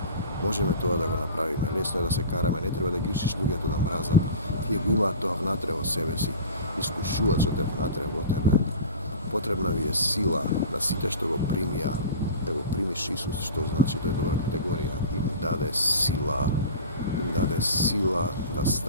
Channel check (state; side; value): inverted; both; correlation -0.36